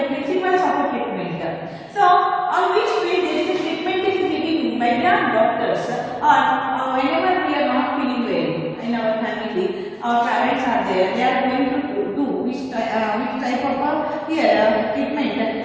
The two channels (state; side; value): identical; both; correlation 1.00